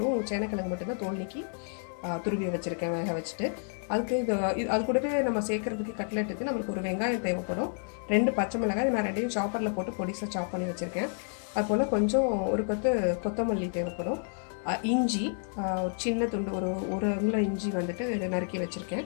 சேனைக்கிழங்கு மட்டும்தான் தோல் நீக்கி துருவி வச்சுருக்கேன் வேக வச்சுட்டு. அதுக்கு அது கூடவே நம்ம சேர்க்குறதுக்கு கட்லெட்டுக்கு நம்மளுக்கு ஒரு வெங்காயம் தேவைப்படும், 2 பச்சை மிளகாய் நான் 2யும் சாப்பரில் போட்டு பொடிசாக சாப் பண்ணி வச்சுருக்கேன். அதுபோல் கொஞ்சம் ஒரு கொத்து கொத்தமல்லி தேவைப்படும், இஞ்சி சின்ன துண்டு ஒரு அங்குல இஞ்சி வந்துட்டு நறுக்கி வச்சுருக்கேன்,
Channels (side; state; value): right; silent; 57 dB below the other